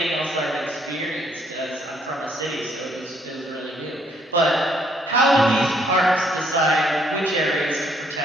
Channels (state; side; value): normal; both; correlation 0.67